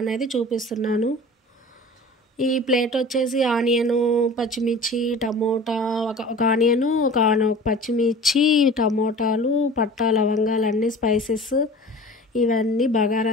అనేది చూపిస్తున్నాను. ఈ ప్లేట్ వచ్చేసి ఆనియను, పచ్చిమిర్చి, టమోటా, ఒక ఆనియను, ఒక పచ్చిమిర్చి, టమోటాలు, పట్టా, లవంగాలు, అన్నీ స్పైసెస్, ఇవన్నీ బగారా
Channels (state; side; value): normal; both; correlation 0.41